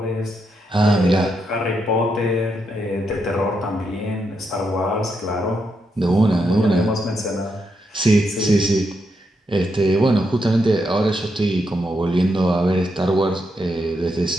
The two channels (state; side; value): normal; both; correlation 0.82